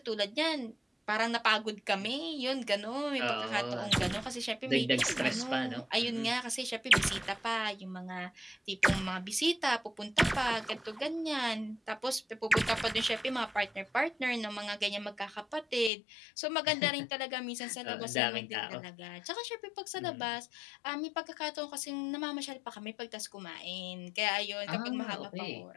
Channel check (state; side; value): drops out; right; at 15.9 s